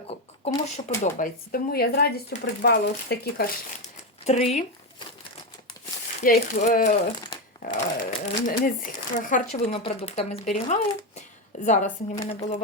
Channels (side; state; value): both; normal; correlation 0.11